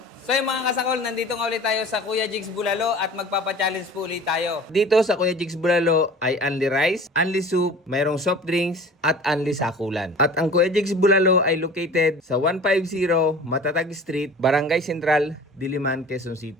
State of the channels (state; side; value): normal; both; correlation 0.42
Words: So yung mga kasakol, nandito nga ulit tayo sa Kuya Jigs Bulalo at magpapa-challenge po ulit tayo. Dito sa Kuya Jigs Bulalo ay only rice, only soup, mayroong soft drinks at only sakulan. At ang Kuya Jigs Bulalo ay located sa 150 Matatag Street, Barangay Central, Diliman, Quezon